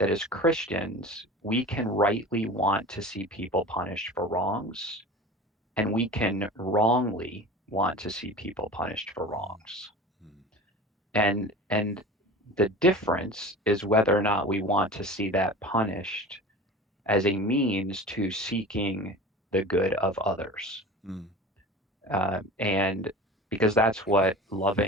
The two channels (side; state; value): both; normal; correlation 0.36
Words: as Christians, we can rightly want to see people punished for wrongs, and we can wrongly want to see people punished for wrongs. Mm. And the difference is whether or not we want to see that punished as a means to seeking the good of others. Mm. And because that's what